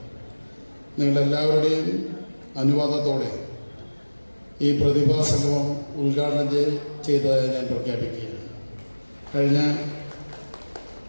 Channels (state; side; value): inverted; both; correlation -1.00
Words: നിങ്ങളെല്ലാവരുടെയും അനുവാദത്തോടെ ഈ പ്രതിഭാ സംഗമം ഉദ്ഘാടനം ചെയ്തതായി ഞാൻ പ്രഖ്യാപിക്കുകയാണ്. കഴിഞ്ഞ